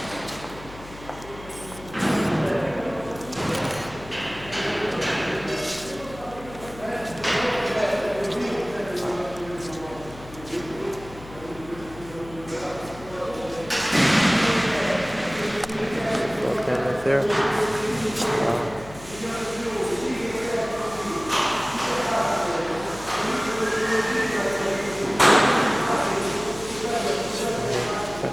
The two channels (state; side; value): noise; left; hum, 17 dB below the sound